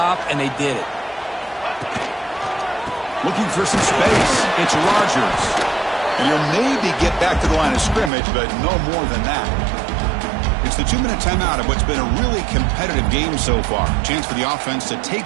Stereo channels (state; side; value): drops out; left; at 8.1 s